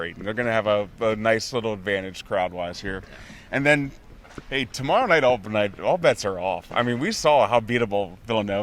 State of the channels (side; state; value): both; identical; correlation 1.00